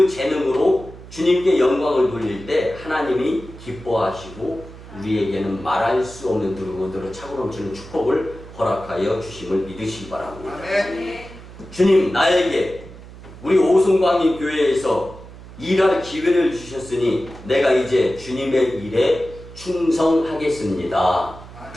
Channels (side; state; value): right; noise; hum, 17 dB below the sound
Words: 재능으로 주님께 영광을 돌릴 때 하나님이 기뻐하시고 우리에게는 말할 수 없는 누르고누르 차고 넘치는 축복을 허락하여 주심을 믿으시기 바랍니다. 주님 나에게 우리 오송광림 교회에서 일할 기회를 주셨으니 내가 이제 주님의 일에 충성하겠습니다.